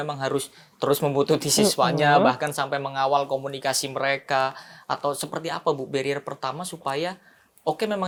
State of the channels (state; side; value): identical; both; correlation 1.00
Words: harus terus membutuhkan siswanya bahkan sampai mengawal komunikasi mereka, atau seperti apa, Bu, barrier pertama supaya memang